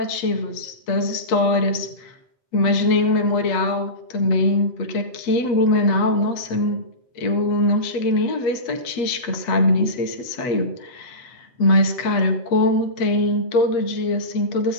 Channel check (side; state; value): right; late; 8.4 ms